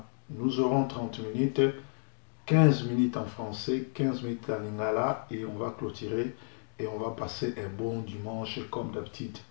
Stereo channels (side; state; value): right; silent; digital silence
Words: Nous aurons 30 minutes. 15 minutes en français, 15 minutes en lingala et on va clôturer et on va passer un bon dimanche comme d'habitude.